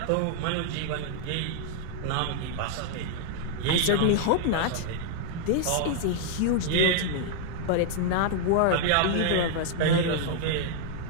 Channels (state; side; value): different; both; correlation -0.01